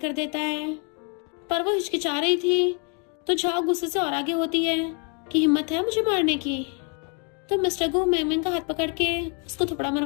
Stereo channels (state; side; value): quieter; right; 34.7 dB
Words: देता है पर वो हिचकिचा रही थी तो झाओ गुस्से से और आगे होती है कि हिम्मत है मुझे मारने की। तो मिस्टर गु मैंग का हाथ पकड़ के उसको थप्पड़